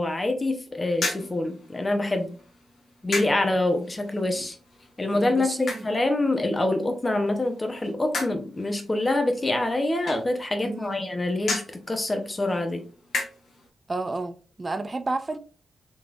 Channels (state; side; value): normal; both; correlation 0.92